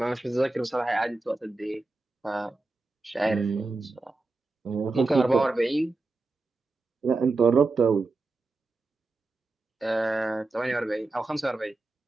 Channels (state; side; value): quieter; left; 3.3 dB